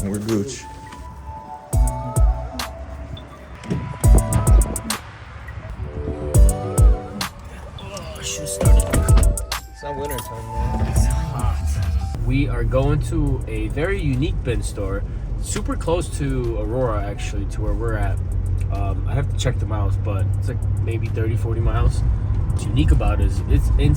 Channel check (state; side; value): identical; both; correlation 1.00